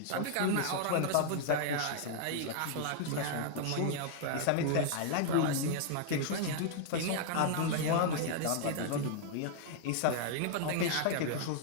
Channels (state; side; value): different; both; correlation -0.01